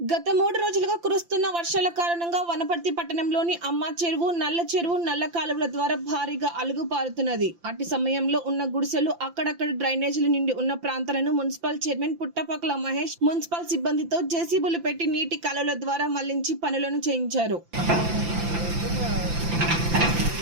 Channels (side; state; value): left; late; 5.8 ms